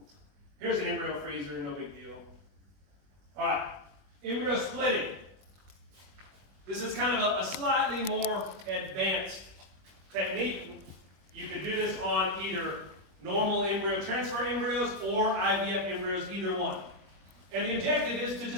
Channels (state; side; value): late; left; 20 ms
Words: Here's an embryo freezer, no big deal. All right, embryo splitting. This is kind of a slightly more advanced technique. You can do this on either normal embryo transfer embryos or IVF embryos, either one. And the objective is to